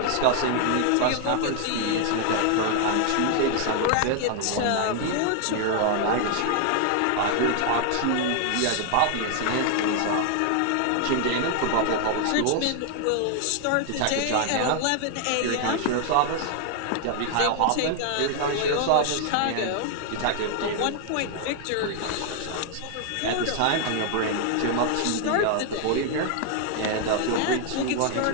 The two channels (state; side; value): different; both; correlation 0.00